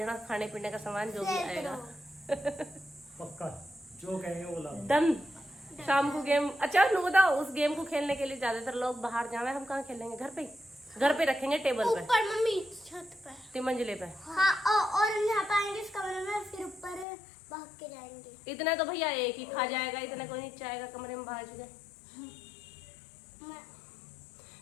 खाने पीने का सामान जो भी आएगा। पक्का जो कहेंगे वो ला। डन। शाम को गेम। अच्छा नु बताओ, उस गेम को खेलने के लिए ज्यादातर लोग बाहर जावे, हम कहाँ खेलेंगे? घर पे। घर पे रखेंगे टेबल पे, ऊपर मम्मी छत पे 3 मंजिले पे। हाँ और हम यहाँ पे आएंगे इस कमरे में, फिर ऊपर भाग के जाएंगे। इतने तो भैया एक ही खा जाएगा, इतने कोई नीचे आएगा कमरे में बाहर।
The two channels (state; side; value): drops out; right; at 17.1 s